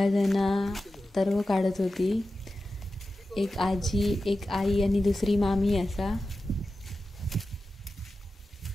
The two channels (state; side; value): normal; both; correlation 0.93